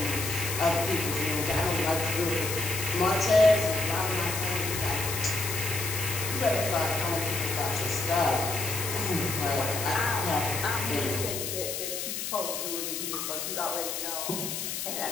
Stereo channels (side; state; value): left; noise; hiss, 4 dB below the sound